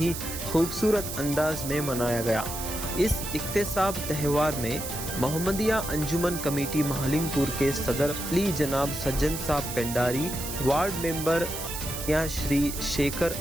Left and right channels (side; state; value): right; noise; hiss, 7 dB below the sound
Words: خوبصورت انداز میں منایا گیا۔ اس اقتصاب تہوار میں محمدیہ انجمن کمیٹی مہلنگ پور کے صدر علی جناب سجن صاحب پنڈاری، وارڈ ممبر یا شری شیکر